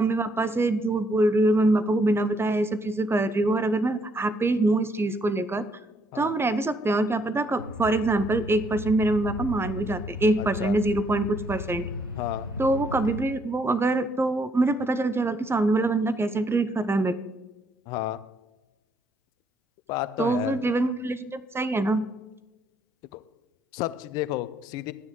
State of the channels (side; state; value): both; normal; correlation 0.70